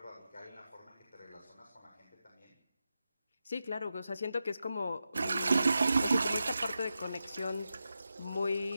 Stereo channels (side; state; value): both; inverted; correlation -0.90